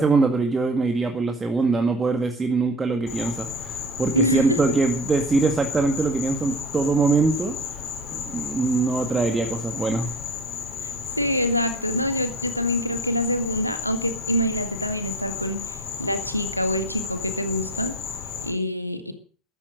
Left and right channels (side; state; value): both; normal; correlation 0.32